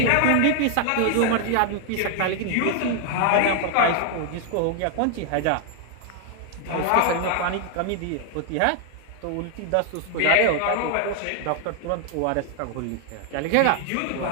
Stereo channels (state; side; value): different; both; correlation 0.00